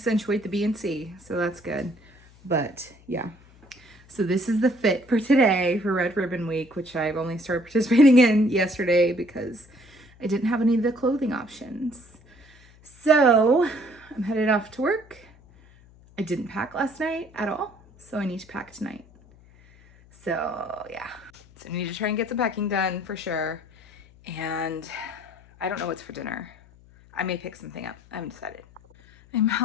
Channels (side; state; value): left; noise; hum, 26 dB below the sound